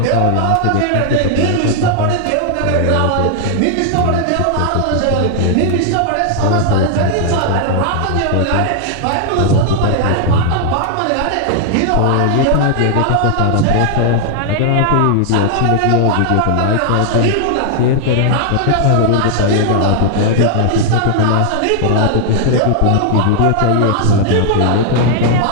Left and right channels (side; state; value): both; different; correlation 0.00